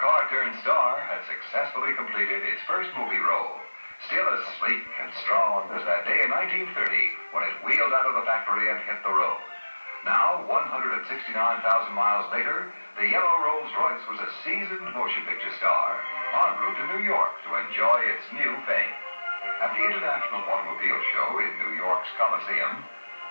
had successfully completed its first movie role, still as sleek and strong as that day in 1930 when it wheeled out of the factory and hit the road. Now, 169,000 miles later, the yellow Rolls-Royce was a seasoned motion picture star, en route to New York to enjoy its new fame. At the International Automobile Show in New York's Coliseum,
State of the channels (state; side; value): inverted; both; correlation -1.00